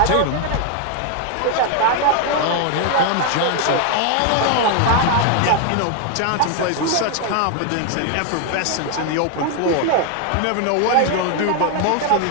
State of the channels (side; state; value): both; different; correlation 0.01